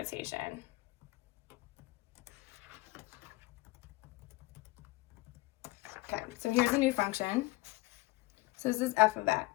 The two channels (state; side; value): quieter; right; 21.4 dB